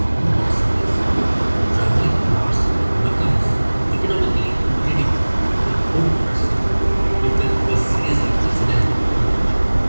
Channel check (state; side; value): inverted; both; correlation -1.00